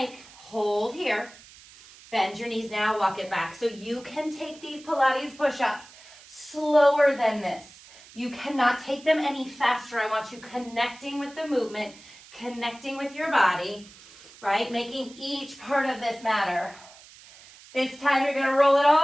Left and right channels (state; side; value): noise; right; hiss, 21 dB below the sound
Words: Hold here. Bend your knees now, walk it back. So you can take these Pilates push-ups slower than this. You cannot take them any faster. I want you connecting with the movement, connecting with your body, right? Making each part of this matter. This time you're gonna roll it